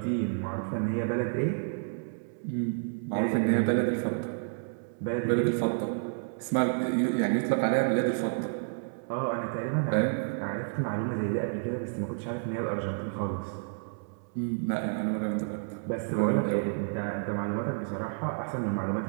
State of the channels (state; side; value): silent; left; digital silence